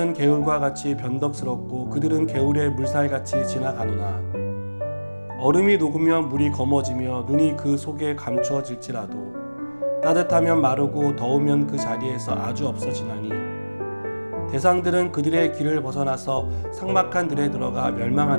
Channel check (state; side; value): inverted; both; correlation -1.00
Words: 개울과 같이 변덕스럽고 그들은 개울의 물살같이 지나가노나 얼음이 녹으면 물이 검어지며 눈이 그 속에 감추어질지라도 따뜻하면 마르고 더우면 그 자리에서 아주 없어지나니 대상들은 그들의 길을 벗어나서 삭막한 들에 들어가